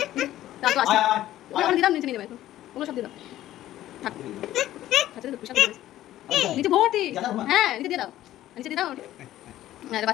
তা তো আসছে ওখানে দিলাম নিচে নিয়ে যাবে এখন ওগুলো সব দিয়ে দাও থাক আচ্ছা তো পেশাব নিচে ভর্তি হ্যাঁ নিচে দিয়ে দাও হ্যাঁ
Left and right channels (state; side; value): quieter; right; 13.8 dB